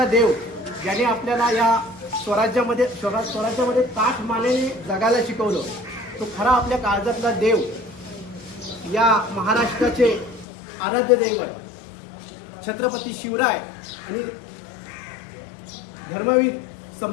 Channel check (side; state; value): right; drops out; at 10.5 s